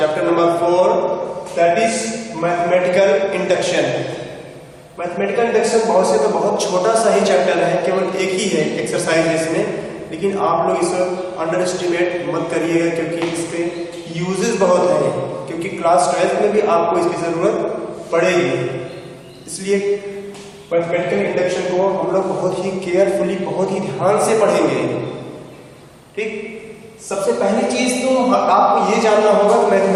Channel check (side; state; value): both; identical; correlation 1.00